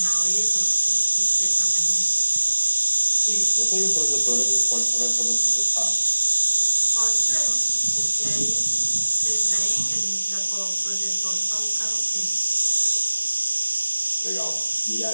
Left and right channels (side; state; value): both; inverted; correlation -0.99